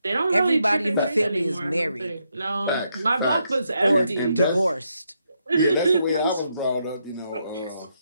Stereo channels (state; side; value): inverted; both; correlation -0.79